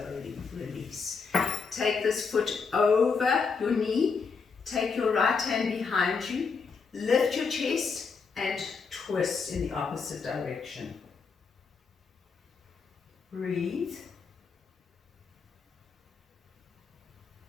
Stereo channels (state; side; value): quieter; right; 5.2 dB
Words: release. Take this foot over your knee, take your right hand behind you, lift your chest, and twist in the opposite direction. Breathe.